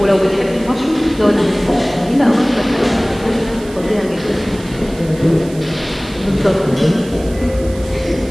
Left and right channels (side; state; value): right; noise; hiss, 20 dB below the sound